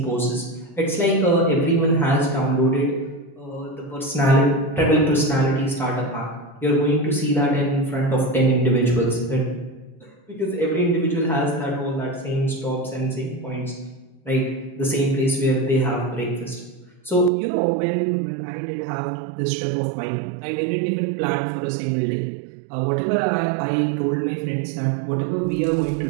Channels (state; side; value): drops out; left; at 17.3 s